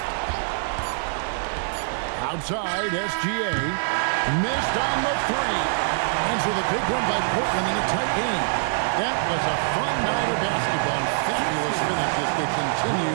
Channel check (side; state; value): left; silent; digital silence